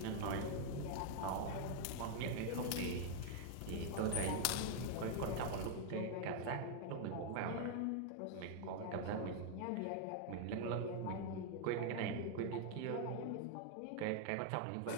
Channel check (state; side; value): different; both; correlation 0.00